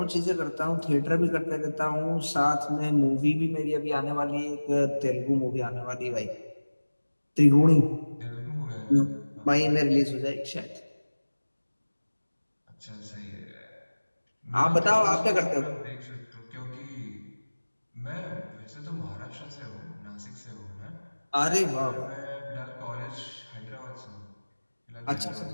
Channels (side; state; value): both; inverted; correlation -1.00